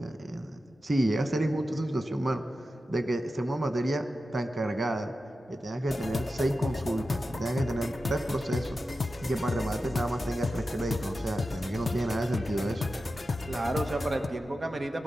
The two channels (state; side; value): normal; both; correlation 0.92